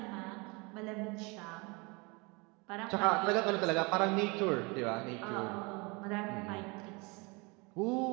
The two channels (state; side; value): quieter; left; 28.1 dB